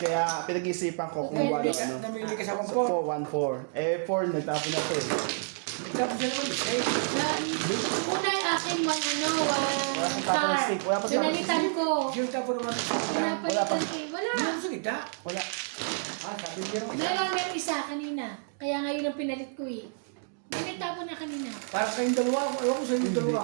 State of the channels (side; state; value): left; silent; digital silence